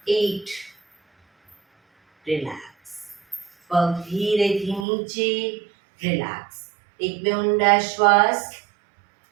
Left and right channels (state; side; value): drops out; left; at 4.9 s